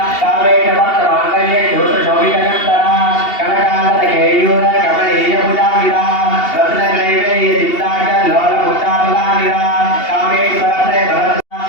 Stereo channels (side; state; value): right; late; 2.8 ms